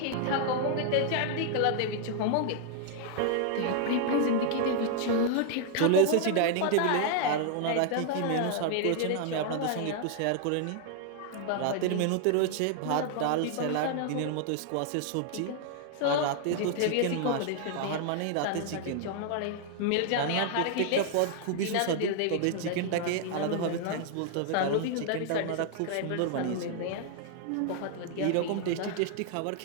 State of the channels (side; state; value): both; different; correlation 0.00